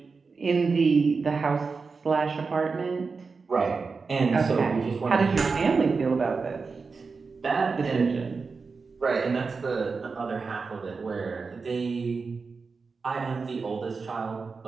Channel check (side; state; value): left; quieter; 4.6 dB